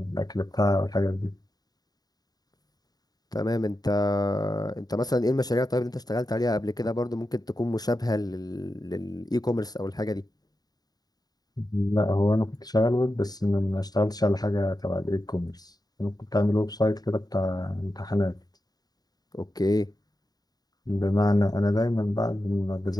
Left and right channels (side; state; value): right; late; 0.19 ms